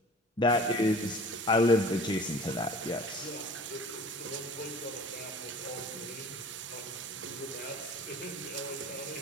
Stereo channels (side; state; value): both; normal; correlation 0.44